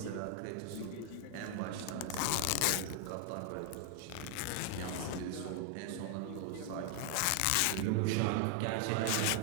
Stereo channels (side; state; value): both; different; correlation 0.00